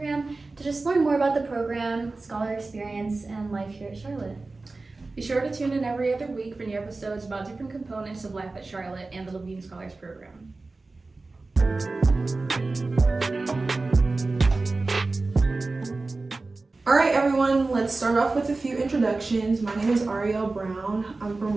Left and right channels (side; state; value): left; quieter; 3.5 dB